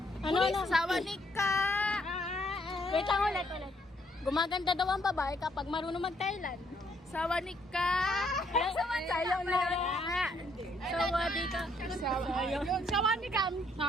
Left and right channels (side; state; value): both; normal; correlation 0.70